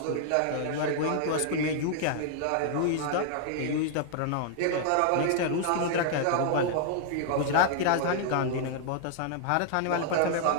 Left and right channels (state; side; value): different; both; correlation 0.00